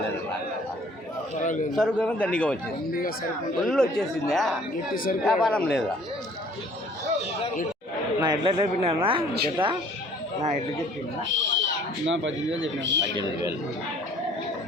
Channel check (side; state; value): both; normal; correlation 0.55